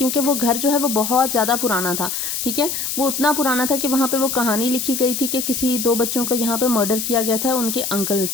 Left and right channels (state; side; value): noise; left; hiss, 3 dB below the sound